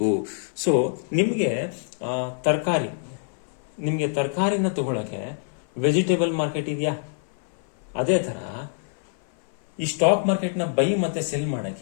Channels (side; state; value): right; silent; 56 dB below the other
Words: ಸೊ ನಿಮಗೆ ತರಕಾರಿನ ತಗೊಳ್ಳೋಕೆ ವೆಜಿಟೇಬಲ್ ಮಾರ್ಕೆಟ್ ಇದೆಯಾ? ಅದೇ ಥರ ಈ ಸ್ಟಾಕ್ ಮಾರ್ಕೆಟ್ನ ಬೈ ಮತ್ತೆ ಸೆಲ್